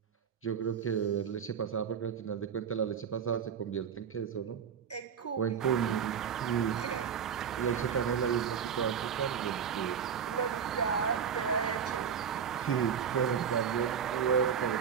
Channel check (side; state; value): left; quieter; 7.5 dB